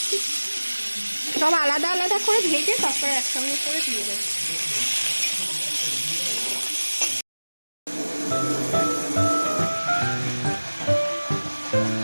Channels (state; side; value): inverted; both; correlation -1.00